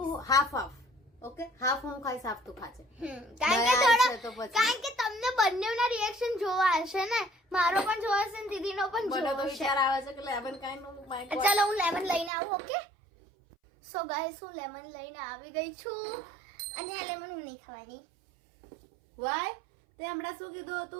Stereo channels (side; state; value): left; drops out; at 12.3 s